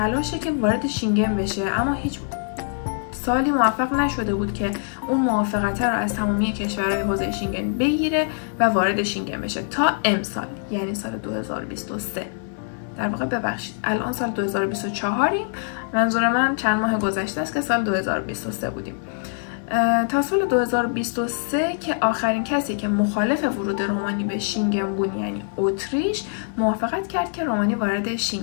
که وارد شینگن بشه، اما هیچ سالی موفق نشده بود که اون موافقت رو از تمامی کشورهای حوزه شینگن بگیره و وارد شینگن بشه تا امسال، یعنی سال 2023. در واقع ببخشید الان سال 2024یم، منظور من چند ماه گذشته است که سال 2023 بودیم. تا سال 2023 که آخرین کسی که مخالف ورود رومانی به شینگن بود، یعنی اتریش، موافقت کرد که رومانی وارد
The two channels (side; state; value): right; silent; 63 dB below the other